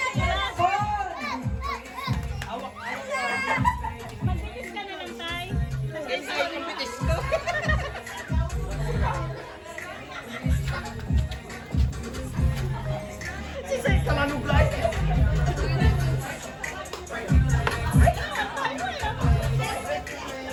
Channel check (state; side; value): identical; both; correlation 1.00